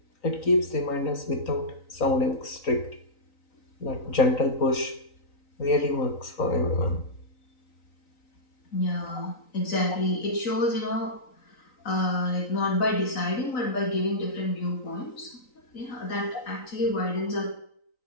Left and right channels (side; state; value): right; late; 3.9 ms